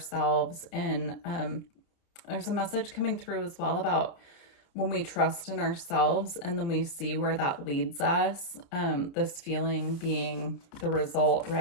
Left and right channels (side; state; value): right; late; 29 ms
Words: And there's a message coming through as well about when we trust in ourselves and then we see where that leads us, this feeling being the result,